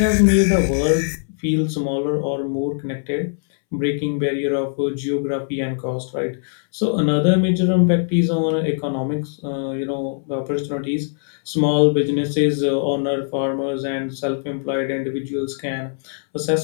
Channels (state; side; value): silent; right; 65 dB below the other